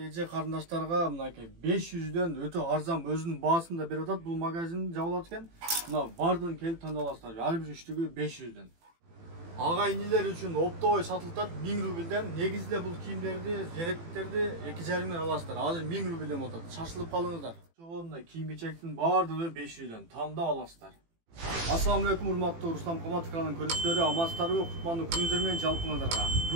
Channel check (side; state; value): left; late; 18 ms